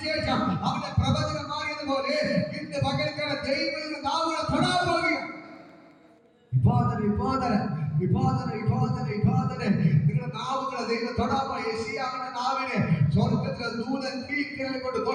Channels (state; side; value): identical; both; correlation 1.00